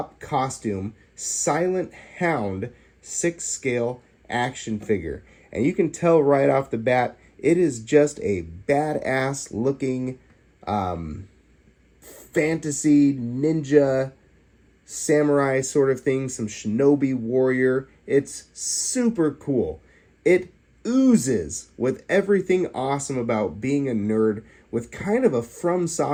Silent Hound 6-scale action figure. And you can tell right off the bat, it is just a badass looking fantasy ninja samurai sort of thing, some Shinobi warrior. It's super cool. It oozes with everything awesome about being a nerd with kind of a From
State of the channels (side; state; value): both; identical; correlation 1.00